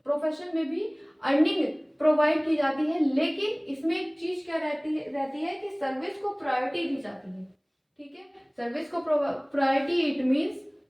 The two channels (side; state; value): both; identical; correlation 1.00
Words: प्रोफेशन में भी अर्निंग प्रोवाइड की जाती है। लेकिन इसमें एक चीज क्या रहती है कि सर्विस को प्रायोरिटी दी जाती है, ठीक है। सर्विस को priority, it means